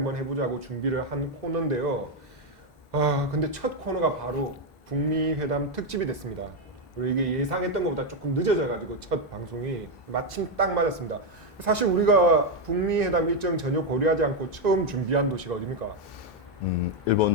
해보자고 준비를 한 코너인데요. 근데 첫 코너가 바로 북미 회담 특집이 됐습니다. 그리고 이게 예상했던 것보다 조금 늦어져가지고 첫 방송이 마침 딱 맞았습니다. 사실 우리가 북미 회담 일정 전혀 고려하지 않고 처음 준비한 도시가 어디입니까?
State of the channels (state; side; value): normal; both; correlation 0.04